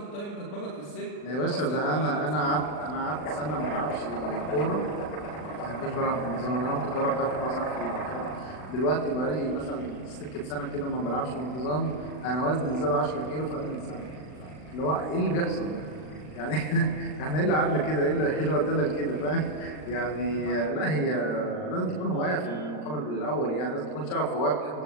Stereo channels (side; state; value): right; late; 39 ms